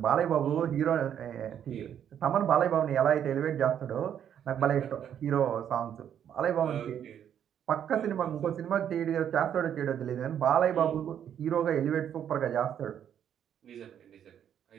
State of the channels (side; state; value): left; quieter; 9.3 dB